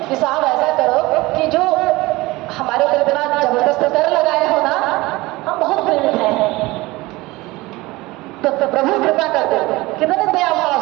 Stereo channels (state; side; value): quieter; left; 20.8 dB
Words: कि साहब ऐसा करो कि जो हमारे ऊपर इतना जबरदस्त कर लगाए हो ना, हम बहुत प्रेरित हैं, तो प्रभु कृपा कर दो। कितने दया भाव